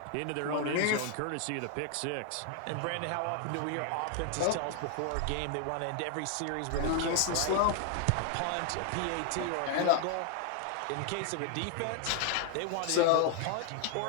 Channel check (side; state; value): both; different; correlation 0.00